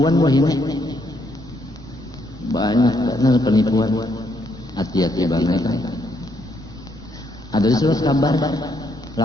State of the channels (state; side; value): normal; both; correlation 0.74